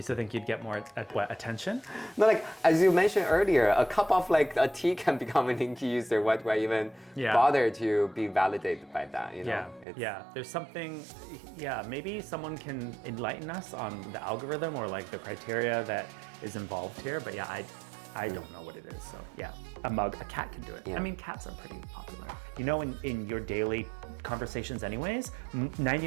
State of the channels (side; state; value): left; drops out; at 9.9 s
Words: still think you'd get more attention? No, like as you mentioned earlier, a cup of like a tea can become a Ninki user. Why do I even bother to be validated by that? You know? There's something. Yeah, maybe someone can enlighten us on the algorithm or like the criteria that is involved here. But yeah, I don't know what it is. So yeah, a cat can do it. Yeah. I mean, cats are pretty popular. You know, in your daily conversations anyways,